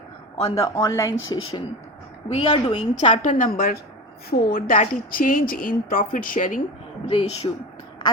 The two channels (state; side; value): normal; both; correlation 0.28